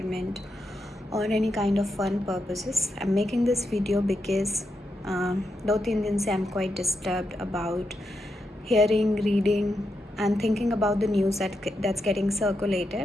or any kind of fun purposes. I'm making this video because दो तीन दिन से I'm quite disturbed about hearing, reading and thinking about the news that's getting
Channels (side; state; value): both; normal; correlation 0.84